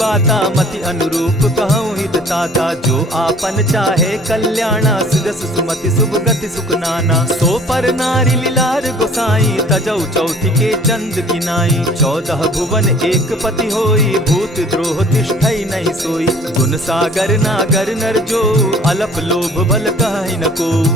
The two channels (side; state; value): both; normal; correlation 0.52